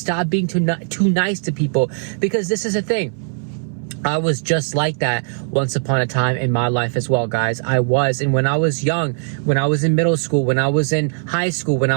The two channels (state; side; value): silent; left; 62 dB below the other